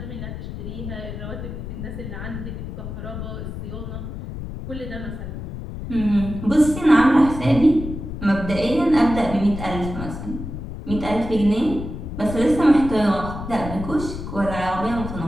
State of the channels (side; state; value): left; noise; rumble, 8 dB below the sound